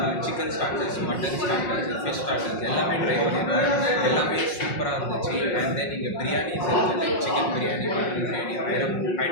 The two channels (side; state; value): right; late; 5.5 ms